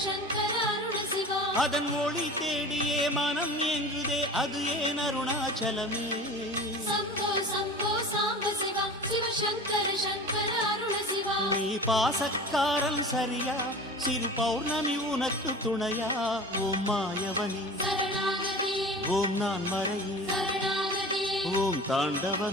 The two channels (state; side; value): normal; both; correlation 0.37